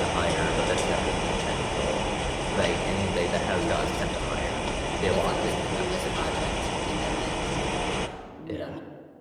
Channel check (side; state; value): both; identical; correlation 1.00